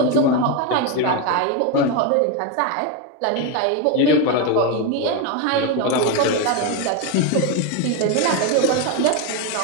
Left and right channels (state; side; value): different; both; correlation 0.02